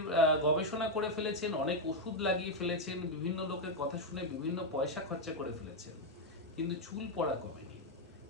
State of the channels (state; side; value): normal; both; correlation 0.03